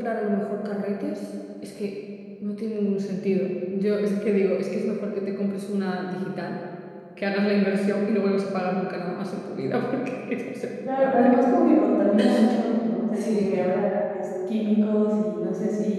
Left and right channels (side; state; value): both; identical; correlation 1.00